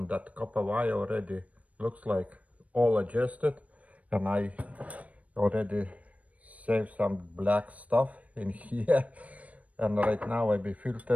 that copper wire already looks like all adjusted, and I already saved some black stuff in here. And right now I be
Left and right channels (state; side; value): late; left; 0.067 ms